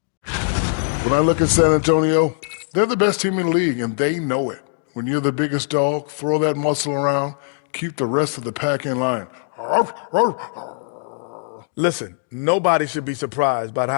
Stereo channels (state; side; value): silent; right; digital silence